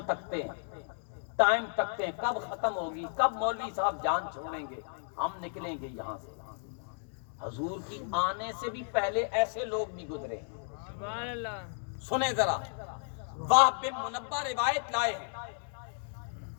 تکتے ہیں، ٹائم تکتے ہیں، کب ختم ہوگی، کب مولوی صاحب جان چھوڑیں گے، ہم نکلیں گے یہاں سے۔ حضور کی آنے سے بھی پہلے ایسے لوگ بھی گزرے ہیں۔ سبحان اللہ۔ سنیں ذرا، وہب بن منبہ روایت لائے ہیں،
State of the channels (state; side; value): silent; right; digital silence